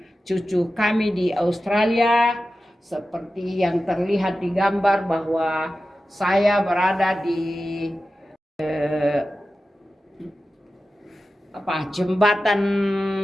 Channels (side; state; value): both; normal; correlation 0.94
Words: cucu kami di Australia. Seperti yang terlihat di gambar bahwa saya berada di jembatan